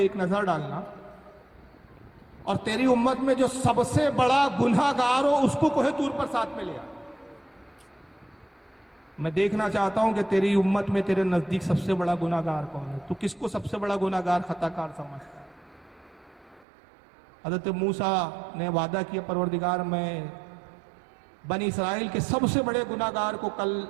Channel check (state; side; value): drops out; left; at 16.7 s